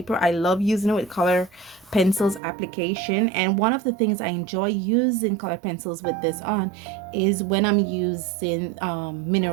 I love using it with color pencils application. And one of the things I enjoy using color pencils with this on is when I'm using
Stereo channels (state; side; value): drops out; left; at 2.4 s